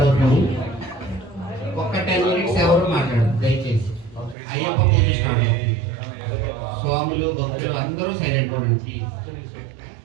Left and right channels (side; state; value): left; drops out; at 4.4 s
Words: అవుతుంది. ఒక్క 10 మినిట్స్ ఎవరు మాట్లాడదు దయచేసి. అయ్యప్ప పూజ స్టార్ట్ అవుతుంది. స్వాములు భక్తులు అందరూ సైలెంట్ గా ఉండండి.